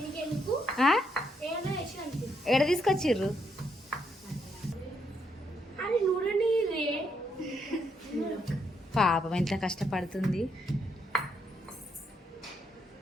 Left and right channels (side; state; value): both; normal; correlation 0.76